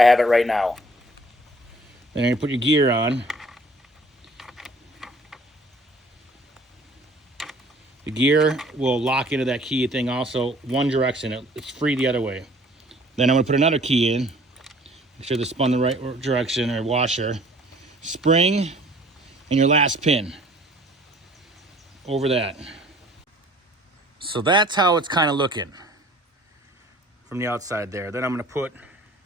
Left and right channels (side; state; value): both; normal; correlation 0.53